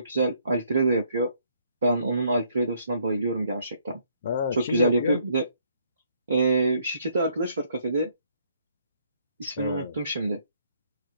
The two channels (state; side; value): inverted; both; correlation -0.67